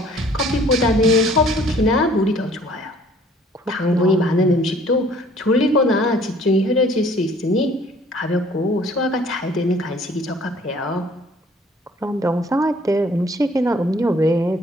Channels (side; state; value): both; normal; correlation 0.56